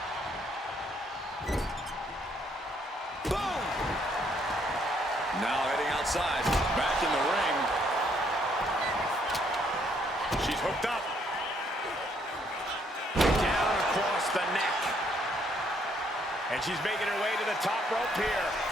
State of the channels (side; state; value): both; normal; correlation 0.69